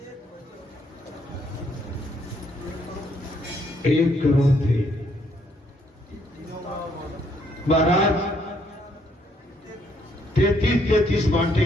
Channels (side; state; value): both; normal; correlation 0.70